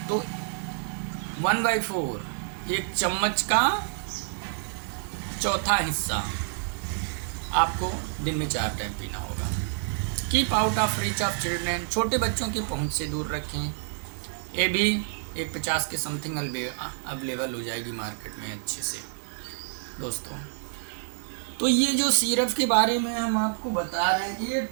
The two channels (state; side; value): silent; left; digital silence